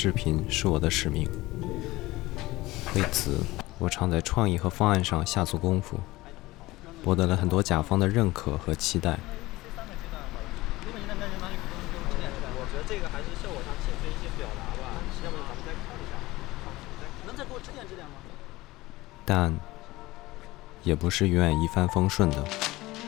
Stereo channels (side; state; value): right; quieter; 19.2 dB